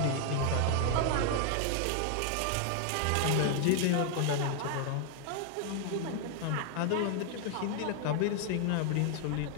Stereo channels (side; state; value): both; different; correlation 0.00